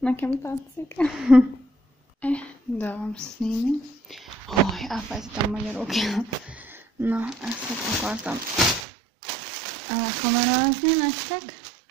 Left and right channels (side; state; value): left; drops out; at 8.8 s